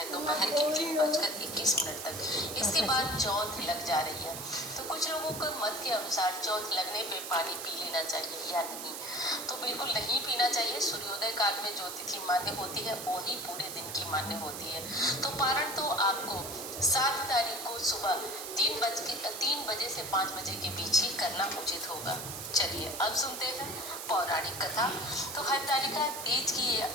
दोपहर के 3:21 तक। इसके बाद चौथ लग जा रही है, तो कुछ लोगों को मत के अनुसार चौथ लगने पे पानी पी लेना चाहिए या नहीं, तो बिल्कुल नहीं पीना चाहिए। सूर्योदय काल में जो तिथि मान्य होती है वही पूरे दिन की मान्य होती है। तो पारण तो आपको 7 तारीख को सुबह 3 बजे से 5 बजे के बीच ही करना उचित होगा। चलिए अब सुनते हैं पौराणिक कथा। तो हरतालिका तीज की ये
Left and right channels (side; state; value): right; noise; hiss, 8 dB below the sound